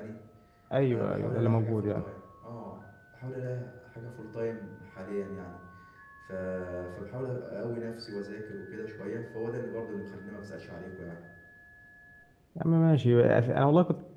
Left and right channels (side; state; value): both; identical; correlation 1.00